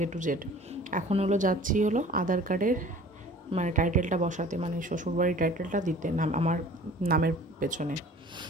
টু জেড। এখন যাচ্ছি আধার কার্ডের মানে টাইটেলটা বসাতে, মানে শ্বশুরবাড়ির টাইটেলটা দিতে নাম আমার নামের পেছনে।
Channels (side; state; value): both; normal; correlation 0.47